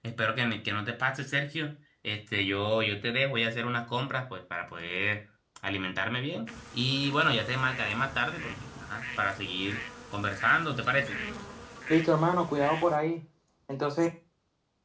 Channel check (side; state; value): both; identical; correlation 1.00